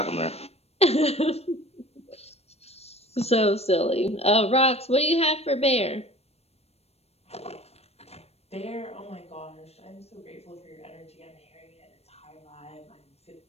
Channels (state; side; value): late; right; 0.30 ms